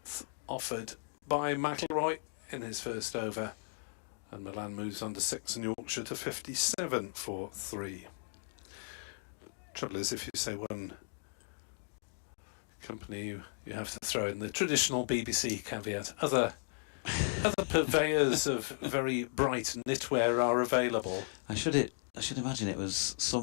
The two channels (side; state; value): right; silent; digital silence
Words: offered by McIlroy in his first over, and Milan moves on to 6 and Yorkshire to 57 for 3. Trouble is, if you say one company, you have to throw in the traditional BBC caveat. Other purveyors of very bright knitwear are available. I should imagine it was